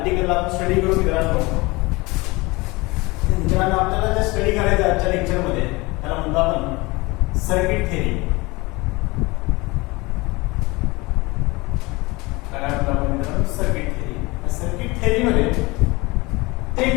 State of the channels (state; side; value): quieter; right; 23.6 dB